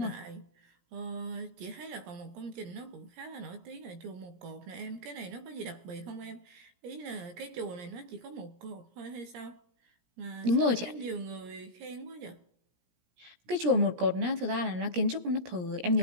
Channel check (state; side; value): late; left; 17 ms